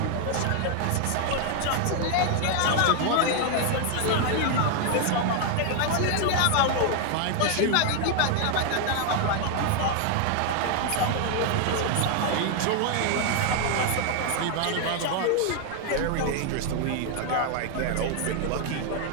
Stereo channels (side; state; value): both; different; correlation 0.00